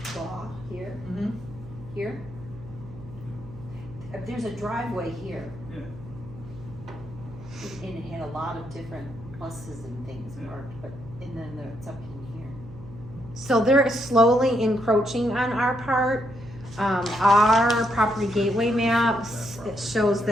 raw here, Mm-hmm. here. There's a driveway here, Yeah. and it had a lot of different pluses and things Yeah. marked, and then it's up in here. so they're slowly encroaching on our part. Our property gateway maps, it shows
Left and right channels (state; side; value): noise; right; hum, 17 dB below the sound